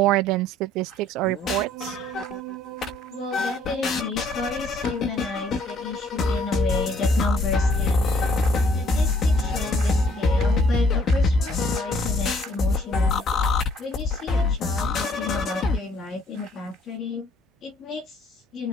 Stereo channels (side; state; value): both; normal; correlation 0.62